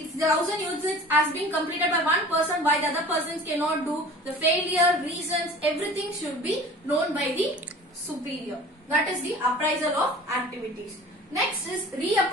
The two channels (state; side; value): normal; both; correlation 0.43